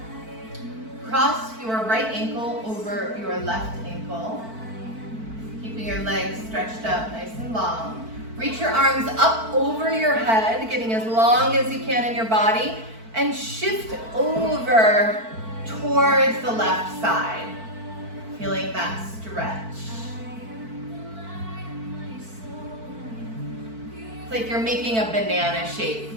Cross your right ankle over your left ankle, keeping your legs stretched out nice and long. Reach your arms up over your head, getting as long as you can in your body, and shift over towards the left side, feeling that stretch. It's like you're making a banana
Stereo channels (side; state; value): left; late; 4.5 ms